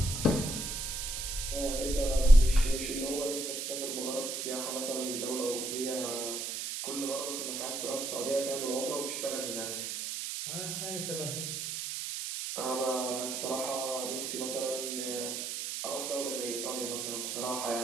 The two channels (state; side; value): noise; right; hiss, 4 dB below the sound